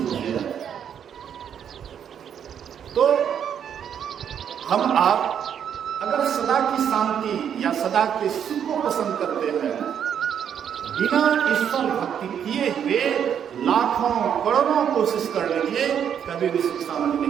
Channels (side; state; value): left; quieter; 8.6 dB